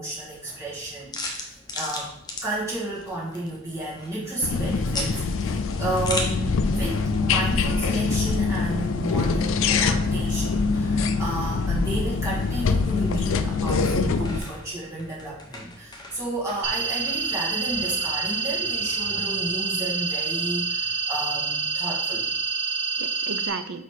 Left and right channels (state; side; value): normal; both; correlation 0.38